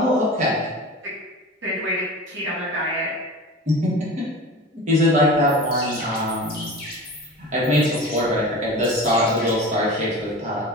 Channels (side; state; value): both; normal; correlation 0.33